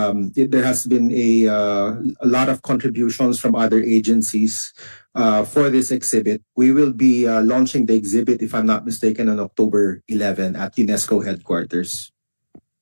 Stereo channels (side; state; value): both; inverted; correlation -1.00